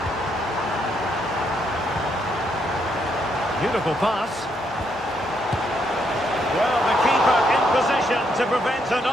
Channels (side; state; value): both; normal; correlation 0.75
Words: Beautiful pass. Well, the keeper in position to prevent